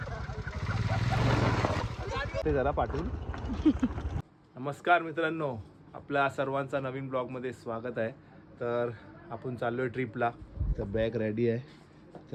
ते जरा पाठवून. नमस्कार मित्रांनो, आपल्या सर्वांचा नवीन ब्लॉगमध्ये स्वागत आहे. तर आपण चाललो आहे ट्रिपला. तर बॅग रेडी आहे,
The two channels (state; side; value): identical; both; correlation 1.00